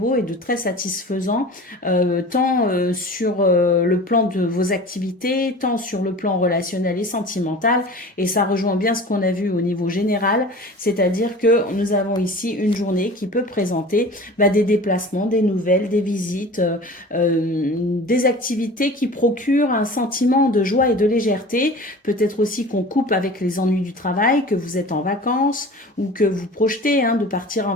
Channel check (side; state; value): both; normal; correlation 0.39